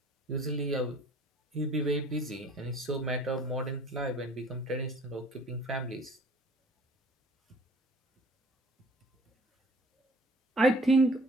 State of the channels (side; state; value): both; normal; correlation 0.51